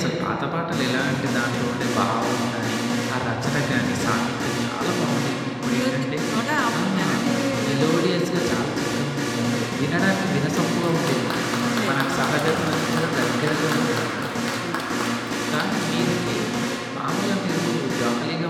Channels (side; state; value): both; identical; correlation 1.00